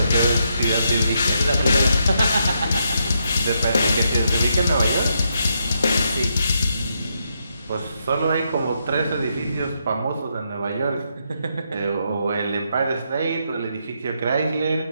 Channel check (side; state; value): both; inverted; correlation -0.79